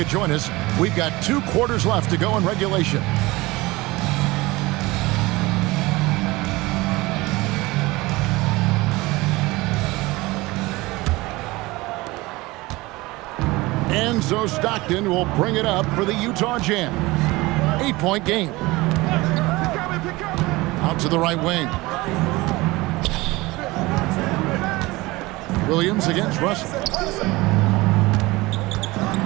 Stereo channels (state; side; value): quieter; left; 21.2 dB